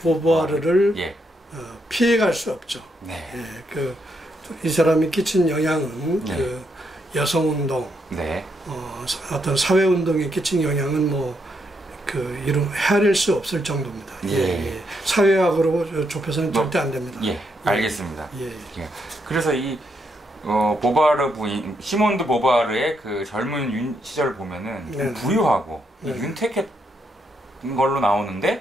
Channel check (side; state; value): both; normal; correlation 0.78